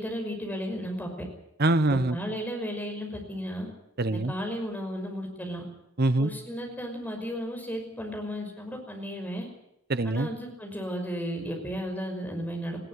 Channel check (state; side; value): normal; both; correlation 0.68